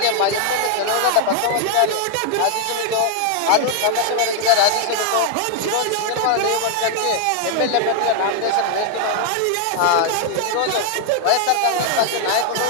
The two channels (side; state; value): both; different; correlation 0.00